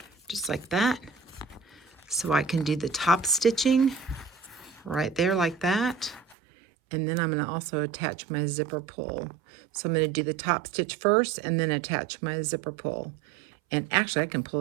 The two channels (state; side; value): drops out; left; at 6.4 s